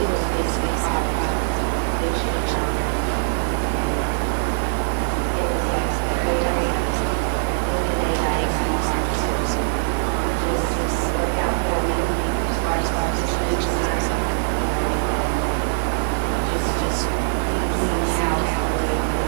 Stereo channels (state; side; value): silent; left; digital silence